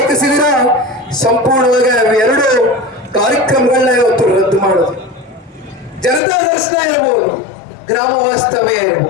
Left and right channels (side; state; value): right; drops out; at 6.2 s